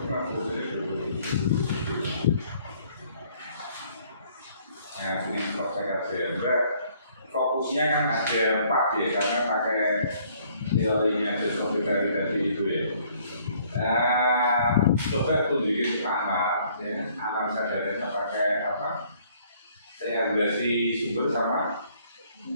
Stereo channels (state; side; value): inverted; both; correlation -0.62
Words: Nah, ini proses fokusnya kan ada 4 ya, karena pakai teorinya dari tadi itu ya. Nah, coba tunjukin amal, ya, amal sadarannya pakai apa? Saya evaluasi sumber sama